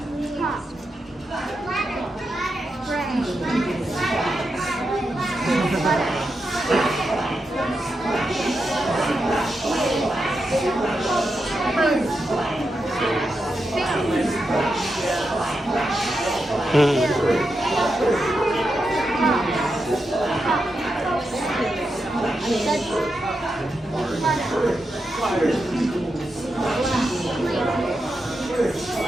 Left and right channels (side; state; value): both; normal; correlation 0.87